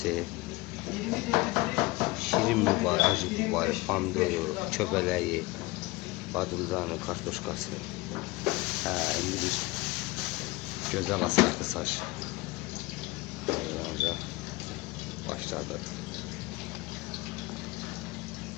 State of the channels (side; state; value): right; quieter; 22.1 dB